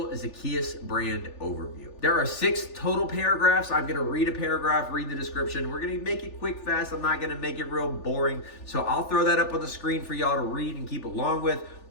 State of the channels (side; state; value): right; late; 3.4 ms